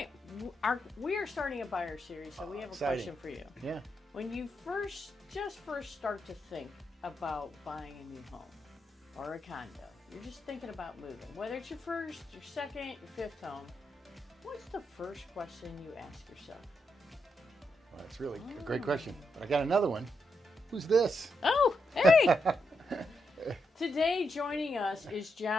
we are starting a buyer series, so we have a exciting. question for you. Yeah. When you first start to think about buying a new home or a condo, you're just thinking about moving, whether it's your first, your second, your fifth home, what's the first question you ask yourself? Well, that's really a great question. But I got another one. Who's this? Oh, hey! Today joining us is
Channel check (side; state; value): both; normal; correlation 0.82